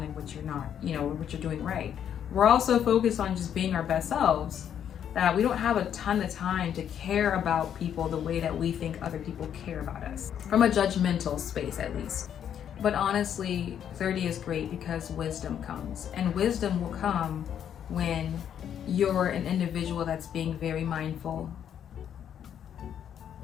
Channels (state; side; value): quieter; right; 9.2 dB